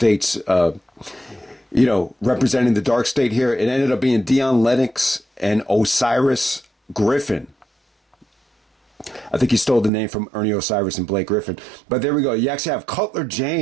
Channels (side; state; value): left; drops out; at 9.9 s